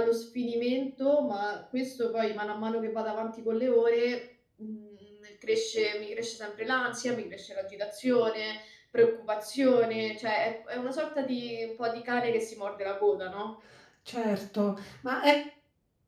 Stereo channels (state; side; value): identical; both; correlation 1.00